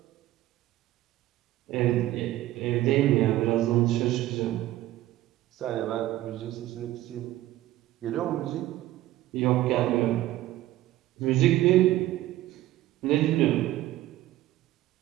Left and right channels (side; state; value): left; quieter; 15.2 dB